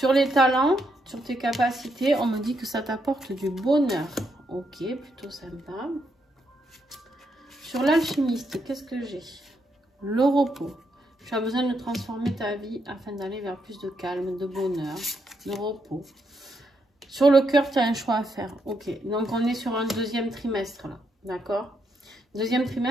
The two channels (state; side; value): normal; both; correlation 0.79